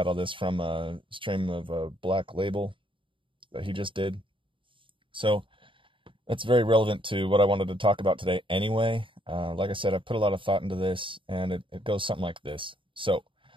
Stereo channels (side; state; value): left; late; 0.25 ms